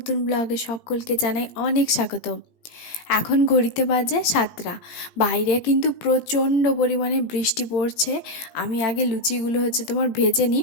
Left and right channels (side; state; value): right; late; 17 ms